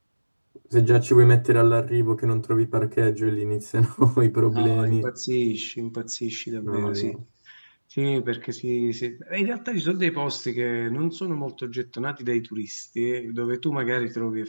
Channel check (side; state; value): both; inverted; correlation -1.00